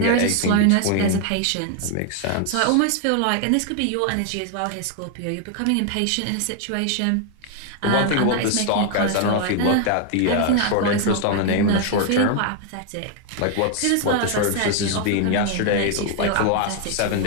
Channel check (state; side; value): different; both; correlation 0.00